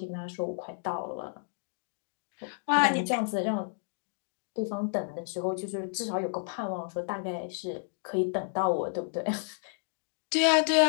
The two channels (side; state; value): right; silent; digital silence